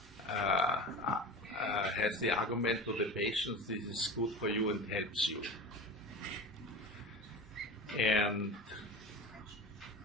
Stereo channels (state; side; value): normal; both; correlation 0.30